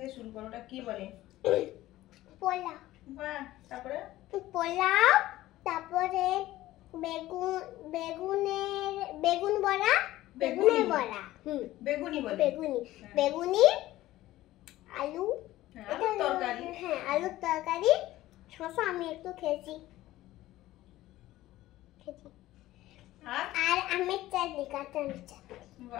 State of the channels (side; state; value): right; quieter; 15.9 dB